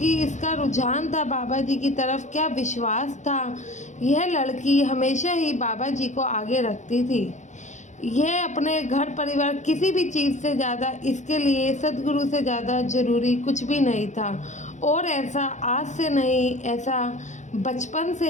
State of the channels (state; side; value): late; right; 0.35 ms